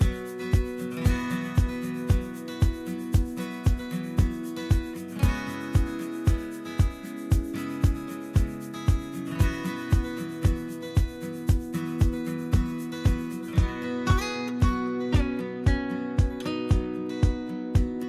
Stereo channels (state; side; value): identical; both; correlation 1.00